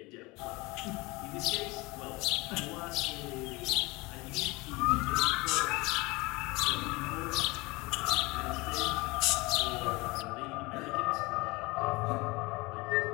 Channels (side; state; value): right; quieter; 23.6 dB